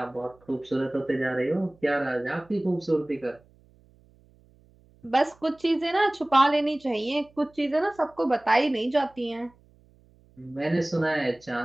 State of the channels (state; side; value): noise; right; hum, 30 dB below the sound